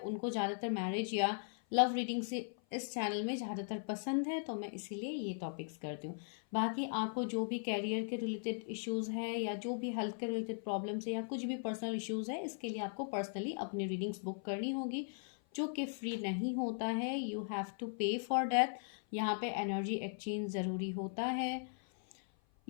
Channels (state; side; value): silent; right; 52 dB below the other